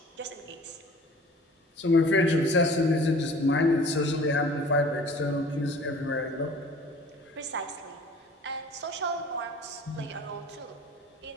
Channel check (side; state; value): both; normal; correlation 0.47